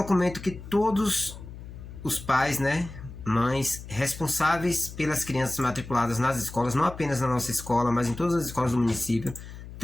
que todos os pais, mães responsáveis pelas crianças matriculadas nas escolas, não apenas na nossa escola, mas em todas as escolas do município,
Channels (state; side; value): noise; left; hum, 13 dB below the sound